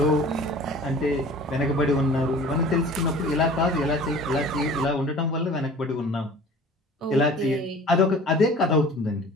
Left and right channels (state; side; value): normal; both; correlation 0.44